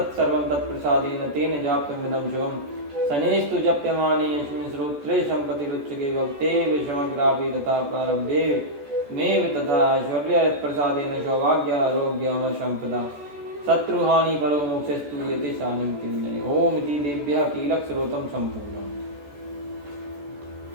तत्प्रसादेन तेन जाप्यमिदं शुभम् शनेस्तु जप्यमाने यस्मिन् श्रोत्रे सम्पतिरुच्यते भक्तेव समग्रापि तथा प्रारब्धे मेव तथा ऐश्वर्यप्रसादेन सौभाग्यारोग्यम सम्पदा शत्रुहानि परो मोक्षस्तु यते शानिं किन्नये ओम इति देव्यः कीलक श्रोतं सम्पूर्णम्।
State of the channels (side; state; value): left; late; 14 ms